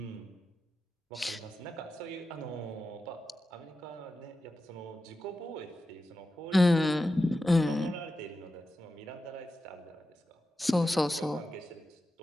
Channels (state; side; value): normal; both; correlation 0.91